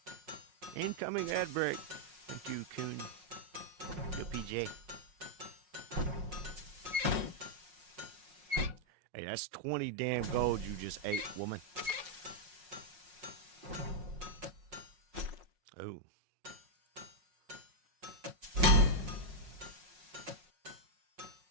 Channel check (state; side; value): late; left; 5.5 ms